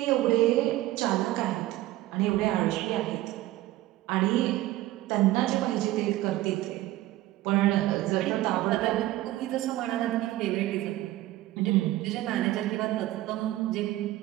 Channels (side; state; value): left; quieter; 16.1 dB